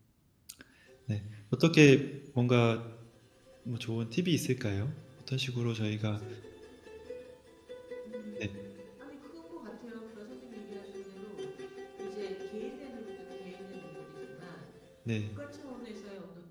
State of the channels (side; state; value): both; identical; correlation 1.00